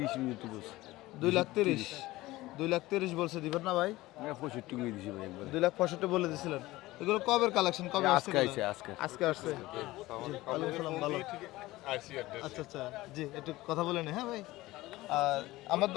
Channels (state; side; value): quieter; right; 18.3 dB